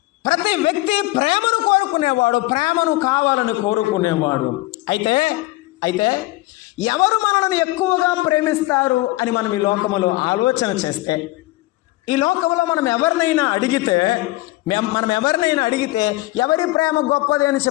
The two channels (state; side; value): quieter; right; 19.1 dB